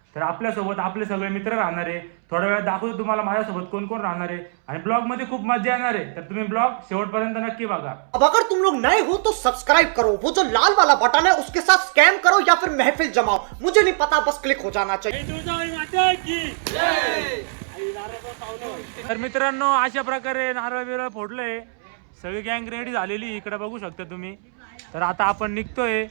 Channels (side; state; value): left; silent; 64 dB below the other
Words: तर आपल्यासोबत आपले सगळे मित्र राहणार आहे. थोड्या वेळात दाखवतो तुम्हाला माझ्यासोबत कोण कोण राहणार आहे आणि ब्लॉगमध्ये खूप मजा येणार आहे. तर तुम्ही ब्लॉग शेवटपर्यंत नक्की बघा. अब अगर तुम लोग नए हो तो सब्सक्राइब करो, वो जो लाल वाला बटन है उसके साथ स्कैम करो या फिर महफिल जमाओ, मुझे नहीं पता, बस क्लिक हो जाना चाहिए। तर मित्रांनो, अशा प्रकारे नारळ बिरळ फोडलंय, सगळी गँग रेडी झालेली इकडे बघू शकता तुम्ही. तर आता आपण निघतोय,